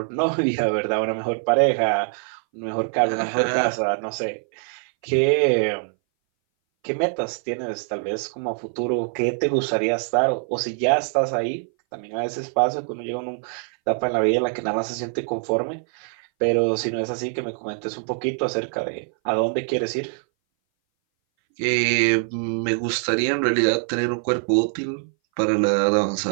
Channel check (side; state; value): left; silent; 60 dB below the other